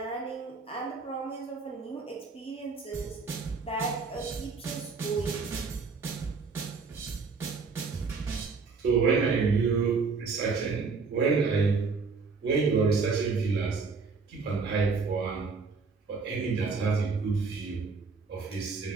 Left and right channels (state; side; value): quieter; left; 4.7 dB